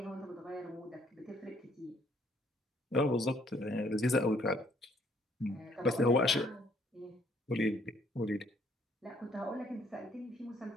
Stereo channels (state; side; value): normal; both; correlation 0.65